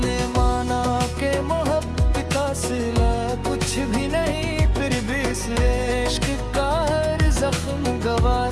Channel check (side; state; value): both; identical; correlation 1.00